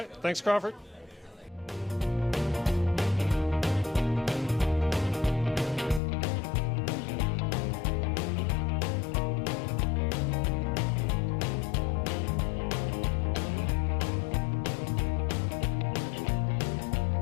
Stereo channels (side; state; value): right; drops out; at 6.0 s